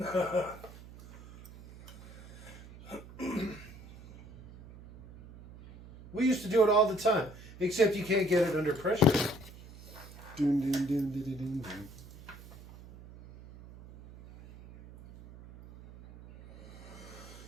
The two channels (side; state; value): right; noise; hum, 18 dB below the sound